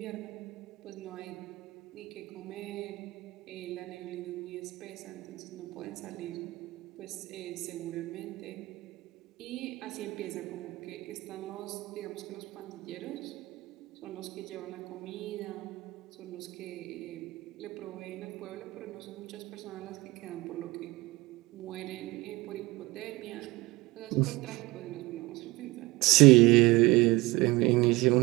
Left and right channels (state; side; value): quieter; left; 21.4 dB